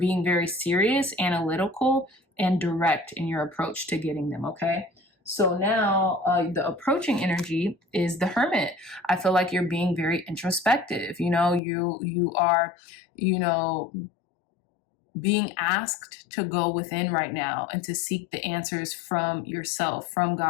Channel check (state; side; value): drops out; right; at 11.6 s